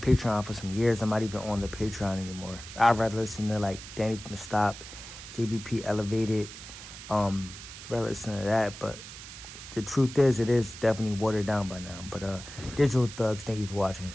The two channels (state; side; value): noise; right; hiss, 13 dB below the sound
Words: for some years. I'm not even on the Patreon anymore. I'd rather listen to like Danny from the Stop, JBP Elevated, rather listen to that. But the truth is, it is definitely watered down by now. But Digital Thugs, thank you for watching.